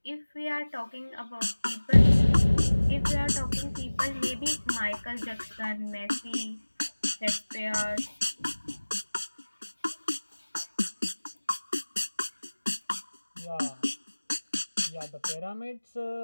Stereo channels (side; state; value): both; inverted; correlation -1.00